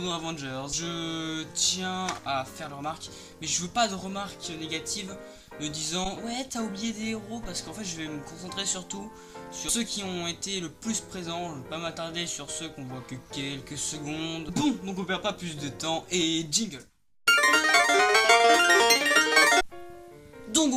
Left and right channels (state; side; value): identical; both; correlation 1.00